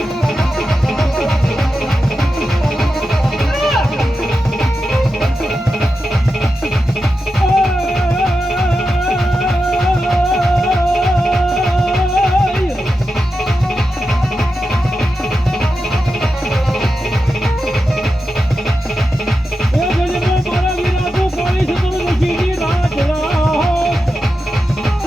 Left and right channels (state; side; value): normal; both; correlation 0.90